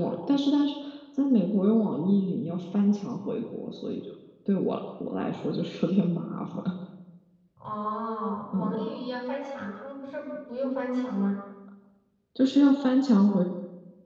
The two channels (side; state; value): both; identical; correlation 1.00